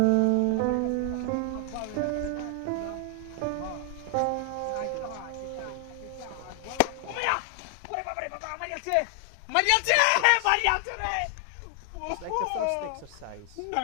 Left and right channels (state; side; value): different; both; correlation 0.00